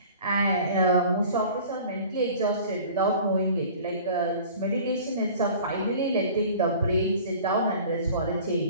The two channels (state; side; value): inverted; both; correlation -0.45